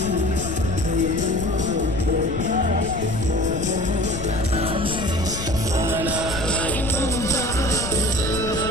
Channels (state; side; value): noise; left; rumble, 6 dB below the sound